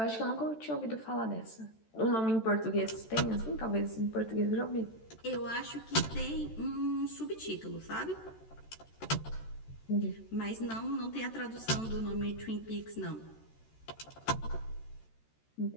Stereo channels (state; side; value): late; right; 13 ms